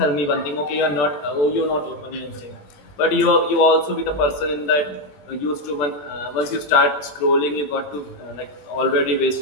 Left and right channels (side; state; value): right; late; 20 ms